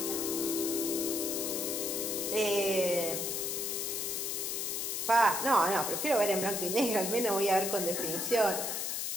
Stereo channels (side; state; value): left; noise; hiss, 1 dB below the sound